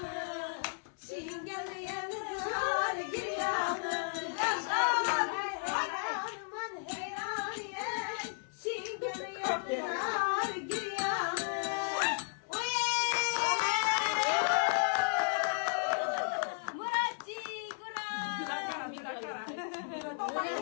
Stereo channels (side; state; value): right; silent; 55 dB below the other